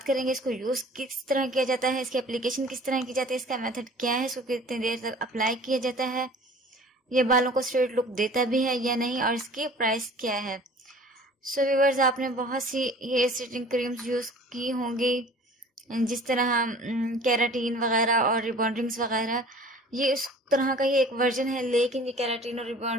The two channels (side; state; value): both; normal; correlation 0.47